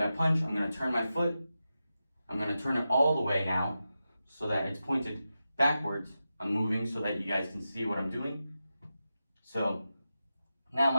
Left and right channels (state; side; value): inverted; both; correlation -0.91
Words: punch, I'm going to turn my foot. I'm going to turn it all the way now so that it's pointed backwards. I'm moving so that you guys can see what I'm doing. So now